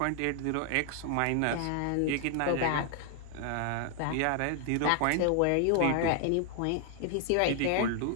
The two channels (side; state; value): both; different; correlation 0.00